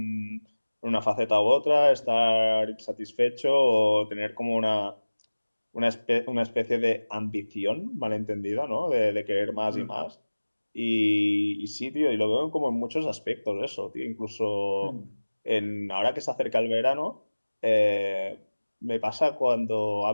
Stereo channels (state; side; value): inverted; both; correlation -1.00